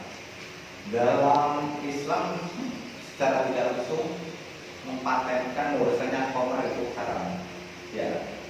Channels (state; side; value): identical; both; correlation 1.00